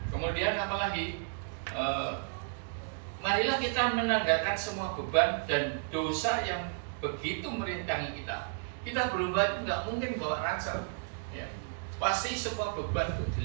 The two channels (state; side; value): silent; left; digital silence